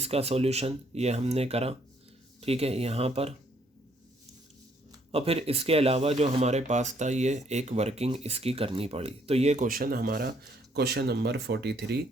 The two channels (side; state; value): both; normal; correlation 0.68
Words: सॉल्यूशन ये हमने करा, ठीक है, यहाँ पर। और फिर इसके अलावा जो हमारे पास था ये एक वर्किंग इसकी करनी पड़ी। तो ये क्वेश्चन हमारा क्वेश्चन नंबर 43